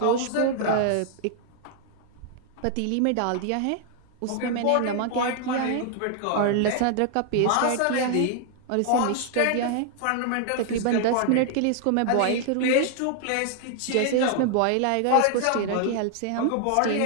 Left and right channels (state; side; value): different; both; correlation 0.00